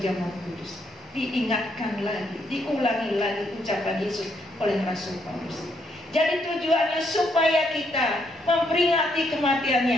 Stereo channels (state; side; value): normal; both; correlation 0.74